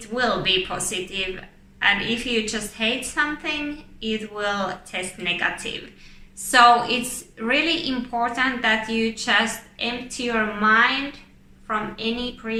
will be positive, and if you just hate something, it will test negative. So it's really important that you just empty your mind from any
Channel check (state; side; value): identical; both; correlation 1.00